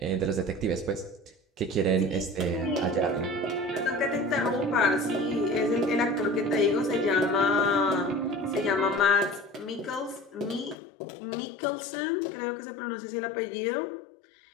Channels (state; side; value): drops out; right; at 10.8 s